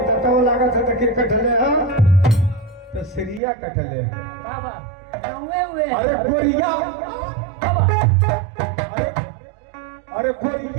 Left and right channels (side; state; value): left; drops out; at 3.4 s